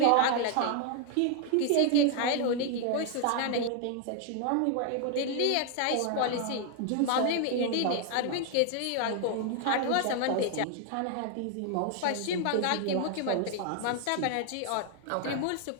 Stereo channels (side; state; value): both; different; correlation 0.00